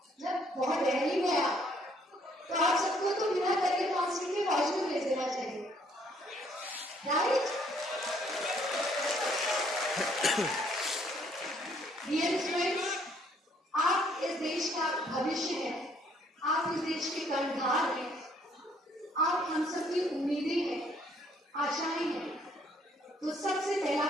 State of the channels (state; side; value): normal; both; correlation 0.65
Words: जब बहुत रैली में तो आप सबको तो बिना करियर काउंसलिंग के कॉलेज में भेज देना चाहिए, राइट? डियर स्टूडेंट्स, आप इस देश का भविष्य हैं, आप इस देश के कर्णधार हैं, आप हम सबकी उम्मीदें हैं, आशाएं हैं। तो सबसे पहला